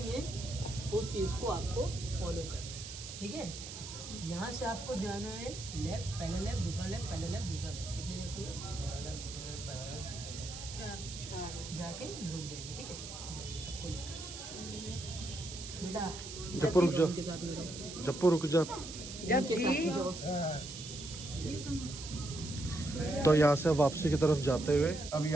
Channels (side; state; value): right; noise; hiss, 10 dB below the sound